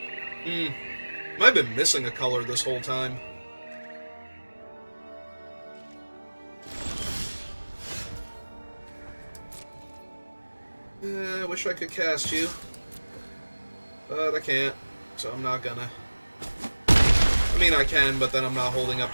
I've been missing a color this whole time. I wish I could cast you, but I can't, so I'm not gonna. I mean, I can, but then I'm not holding up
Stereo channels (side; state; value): both; inverted; correlation -1.00